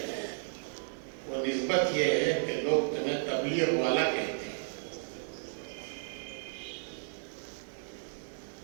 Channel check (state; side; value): silent; left; digital silence